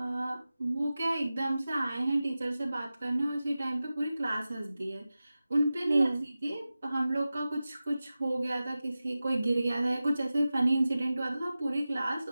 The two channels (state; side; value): inverted; both; correlation -0.95